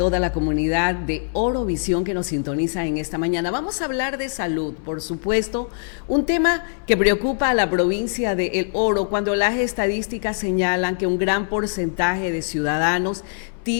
la comunidad de Orovisión que nos sintoniza en esta mañana. Vamos a hablar de salud, por supuesto, un tema que preocupa a la provincia de El Oro cuando las estadísticas señalan que un gran porcentaje de ciudadanos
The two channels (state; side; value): silent; right; 64 dB below the other